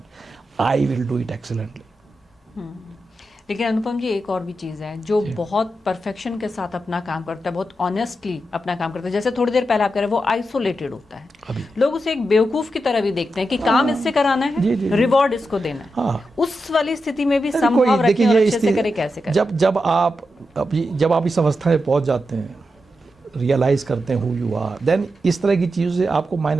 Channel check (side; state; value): both; normal; correlation 0.88